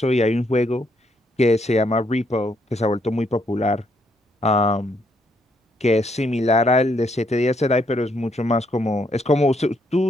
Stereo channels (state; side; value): normal; both; correlation 0.73